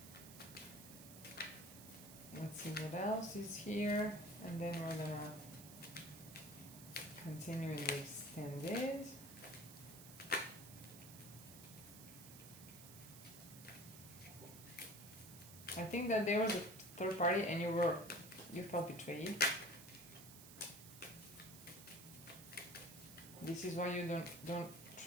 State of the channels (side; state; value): right; noise; hiss, 15 dB below the sound